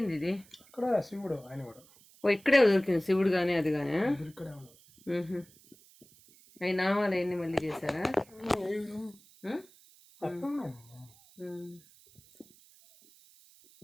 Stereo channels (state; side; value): noise; right; hiss, 26 dB below the sound